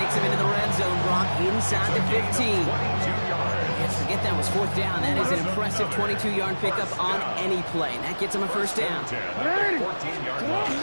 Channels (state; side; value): inverted; both; correlation -1.00